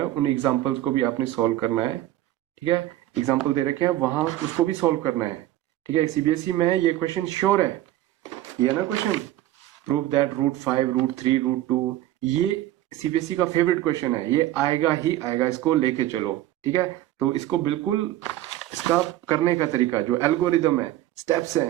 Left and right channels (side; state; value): left; quieter; 14.4 dB